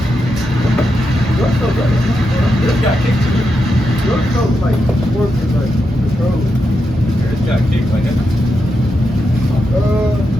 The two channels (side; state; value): both; normal; correlation 0.85